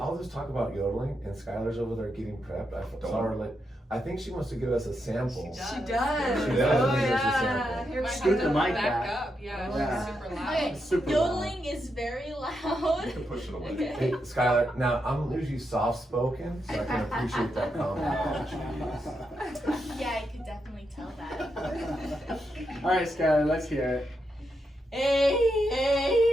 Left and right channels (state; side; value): normal; both; correlation 0.83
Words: just talk about yodeling, and Skylar's over there getting prepped. Saw her like, I think she wants to give us a sample. She does. She does. She does. Oh Give us a yeah. sample. Here we Might Scoot have the to mic back back. up. Yeah, Yeah. she's super loud. Okay, Super yodeling is very loud. You can push it away. Okay. Hey, Skylar, now I'm usually soft spoken, so I can appreciate that Oh, comment. jeez. Yeah, I could definitely tell that. All right, Skylar, let's hear it. Hey,